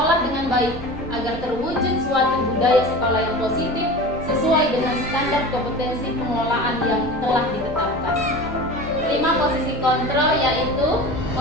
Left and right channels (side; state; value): both; normal; correlation 0.34